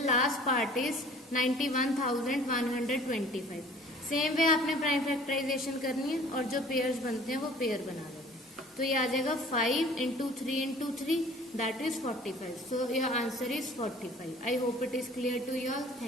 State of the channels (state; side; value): normal; both; correlation 0.50